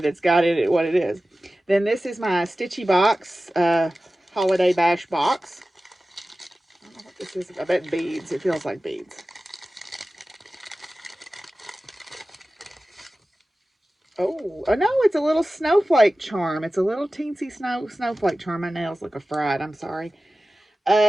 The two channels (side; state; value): both; normal; correlation 0.96